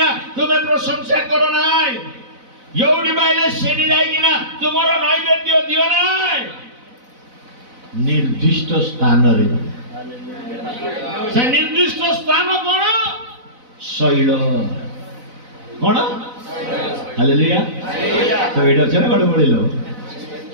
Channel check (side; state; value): left; late; 4.0 ms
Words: ତୁମେ ପ୍ରଶଂସା କର ନାହିଁ, ଯୋଉଠି ପାଇଲେ ସେଇଠି ଯାଇକିନା ତୁମର ନୈବେଦ୍ୟ ଦିଅ ନାହିଁ। ନିର୍ଦ୍ଦିଷ୍ଟ ସ୍ଥାନରେ, ସେ ନିର୍ଦ୍ଦିଷ୍ଟ ସ୍ଥାନ କଣ? ଶୈଳ। କଣ? ହାଲେଲୁୟା। ତ ଏଇଟା ଅଛି ନା ଗୋଟେ ବଳିଲ